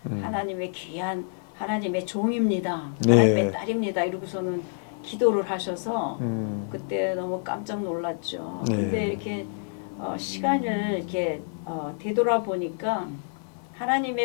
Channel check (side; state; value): right; silent; digital silence